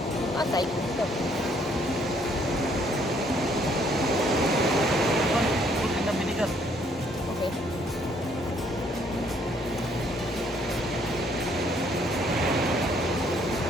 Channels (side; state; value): both; normal; correlation 0.66